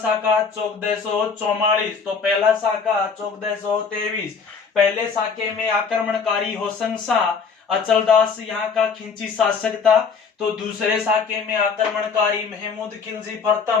1444। तो पहला शाखा 1423। पहले शाखे में आक्रमणकारी होसंग शाह अचलदास यहाँ का खिंची शासक था। तो दूसरे शाखे में आक्रमणकारी महमूद खिलजी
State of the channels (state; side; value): quieter; right; 5.5 dB